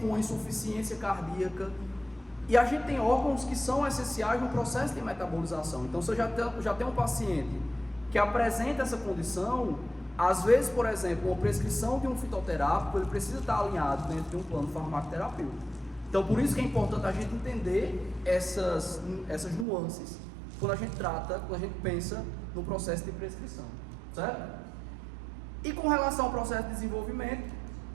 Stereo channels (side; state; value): left; drops out; at 19.7 s